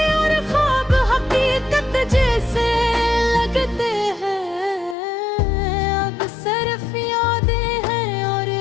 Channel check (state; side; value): drops out; right; at 5.0 s